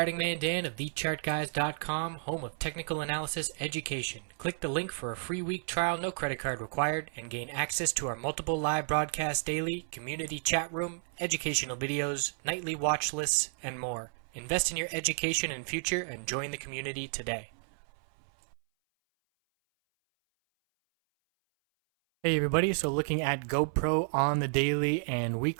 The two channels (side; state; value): left; silent; 56 dB below the other